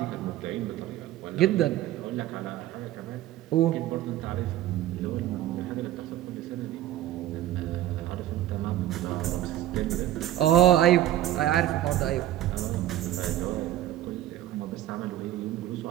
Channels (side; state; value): left; quieter; 13.3 dB